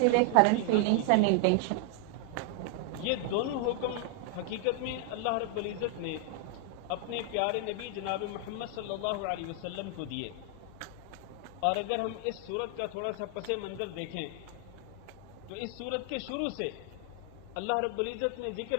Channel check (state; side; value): different; both; correlation 0.00